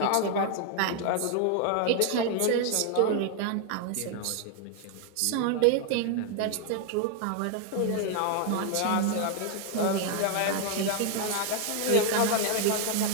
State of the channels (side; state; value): both; different; correlation 0.00